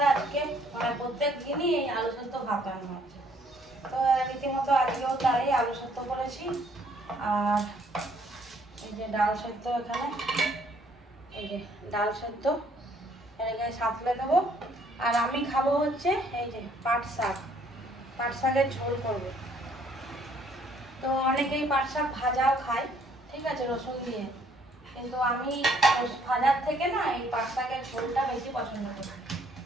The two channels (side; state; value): both; normal; correlation 0.64